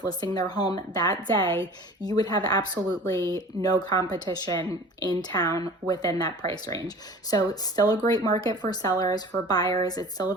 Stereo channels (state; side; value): normal; both; correlation 0.42